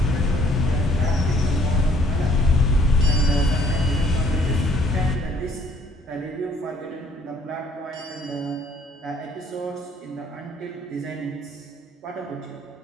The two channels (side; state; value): both; normal; correlation 0.62